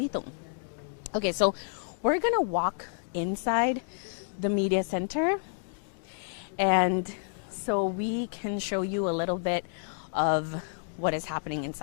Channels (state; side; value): silent; right; digital silence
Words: Okay, so we're gonna walk inside the media center, and so we can show you a little bit of what is happening